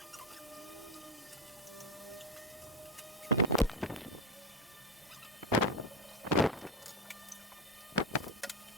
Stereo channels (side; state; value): both; normal; correlation 0.15